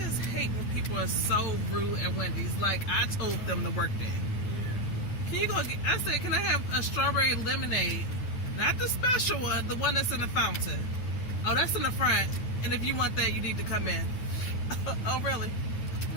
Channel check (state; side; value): late; right; 9.1 ms